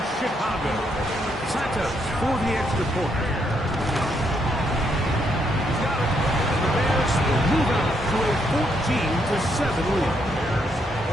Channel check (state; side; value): normal; both; correlation 0.75